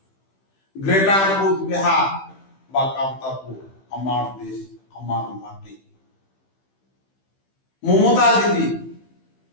গ্রেটার কোচবিহার বা কামতাপুর আমার দেশ, আমার মাটি। মমতা দিদি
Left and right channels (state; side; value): late; right; 15 ms